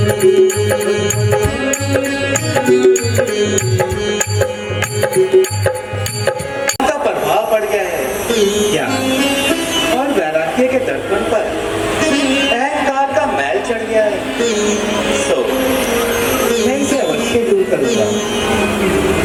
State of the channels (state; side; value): identical; both; correlation 1.00